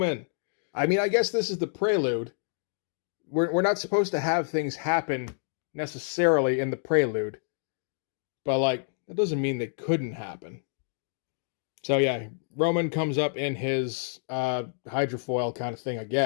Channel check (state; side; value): silent; right; digital silence